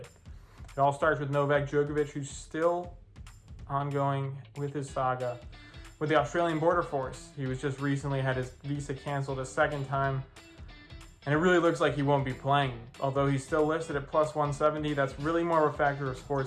It all starts with Novak Djokovic, who's still ongoing with his saga with the Australian border force. He was just recently had his visa canceled a second time, and it really looks like he won't be playing. Although he's still listed at plus 170, that's really more of a factor of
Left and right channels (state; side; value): identical; both; correlation 1.00